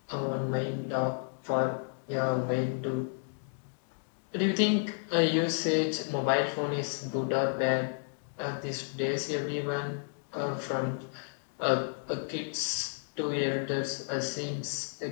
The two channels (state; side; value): silent; right; digital silence